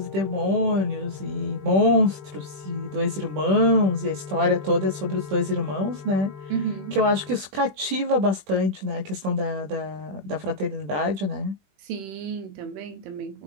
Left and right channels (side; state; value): left; late; 20 ms